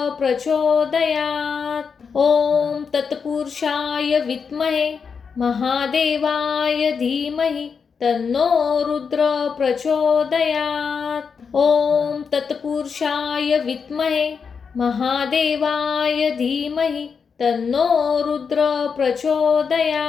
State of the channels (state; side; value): quieter; right; 5.9 dB